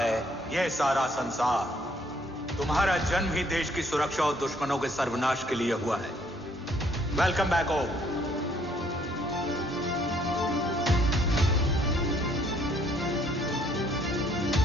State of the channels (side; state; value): both; normal; correlation 0.65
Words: ये सारा संसार। तुम्हारा जन्म ही देश की सुरक्षा और दुश्मनों के सर्वनाश के लिए हुआ है। वेलकम बैक ओम।